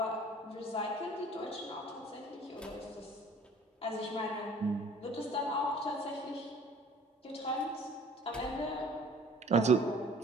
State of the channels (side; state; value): both; normal; correlation 0.51